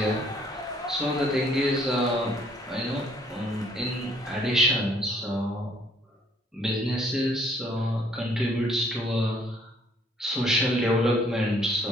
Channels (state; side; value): normal; both; correlation 0.63